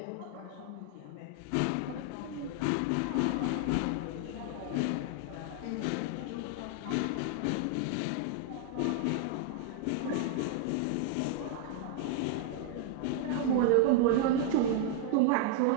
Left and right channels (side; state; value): both; different; correlation 0.00